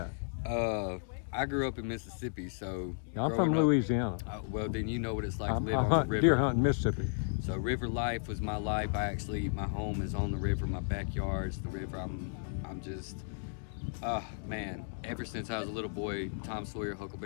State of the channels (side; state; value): right; silent; digital silence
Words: I grew up in Mississippi, so I'm from Louisiana. Well, then you know what it's like to live on the river. Deer hunting, Mississippi. So river life was my life. My home is on the river. My backyard's the river. I'm just, man. Ever since I was a little boy, Tom Sawyer,